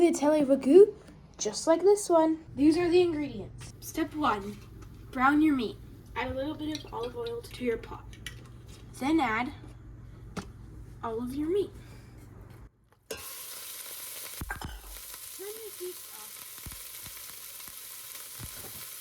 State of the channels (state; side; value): identical; both; correlation 1.00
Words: ragu, just like this one. These are the ingredients. Step 1, brown your meat. Add a little bit of olive oil to your pot. Then add all of your meat. Turn the heat off.